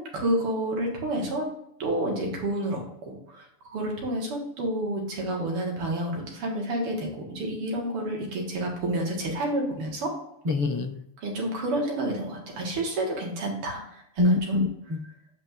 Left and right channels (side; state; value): left; late; 7.0 ms